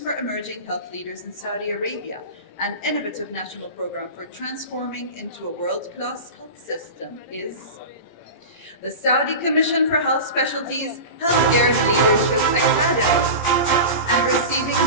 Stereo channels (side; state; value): right; late; 17 ms